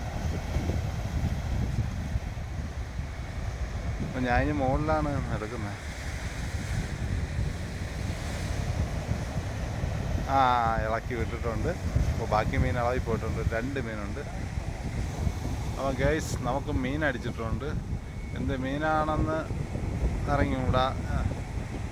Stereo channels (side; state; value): both; identical; correlation 1.00